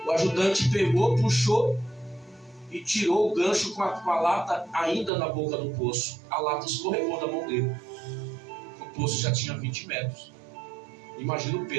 O ajudante pegou, puxou e tirou o gancho com a lata ainda na boca do poço. A lata escorregou da mão dele. O poço já tinha 20 metros. Imagina o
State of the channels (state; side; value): drops out; left; at 5.1 s